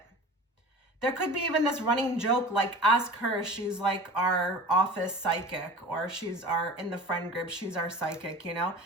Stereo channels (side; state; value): both; normal; correlation 0.38